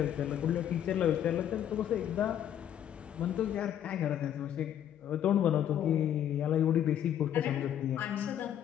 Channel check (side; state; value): right; quieter; 10.2 dB